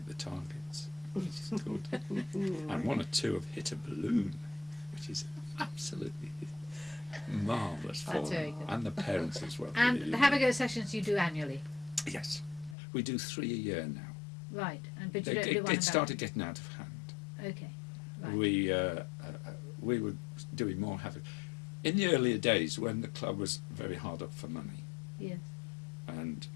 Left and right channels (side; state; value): right; drops out; at 12.8 s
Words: the targets, which is good. And 1 or 2 have hit a balloon, which is absolutely marvellous for That's them, very good. and the parents as well. And the have-a-go sessions you do annually? Yes, we do 3 a year now. Right. And but you don't do one It started getting out of hand. Okay. Right. We were doing more havoc in the earlier days when the club was very hard up for money, Yes. and